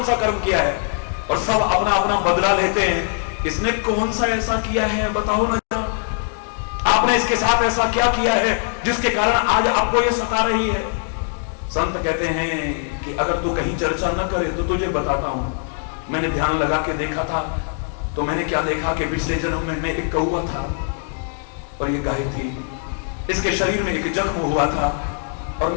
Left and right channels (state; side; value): silent; right; 64 dB below the other